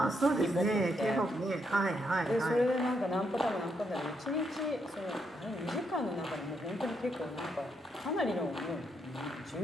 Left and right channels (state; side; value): normal; both; correlation 0.78